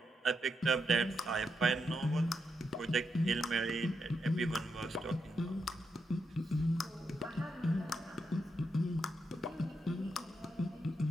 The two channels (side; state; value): both; normal; correlation 0.83